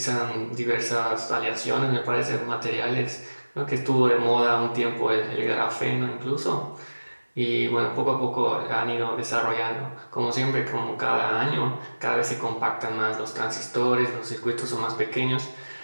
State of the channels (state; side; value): inverted; both; correlation -1.00